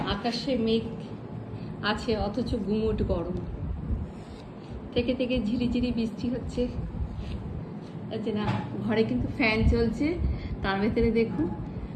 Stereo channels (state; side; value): identical; both; correlation 1.00